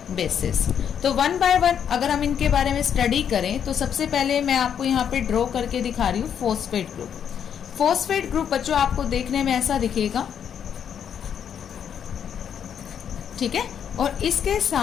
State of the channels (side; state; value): right; quieter; 8.3 dB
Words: bases. तो वन बाय वन अगर हम इनके बारे में स्टडी करें तो सबसे पहले मैं आपको यहाँ पे ड्रॉ करके दिखा रही हूँ फॉस्फेट ग्रुप. फॉस्फेट ग्रुप बच्चों आपको देखने में ऐसा दिखेगा. ठीक है, और इसके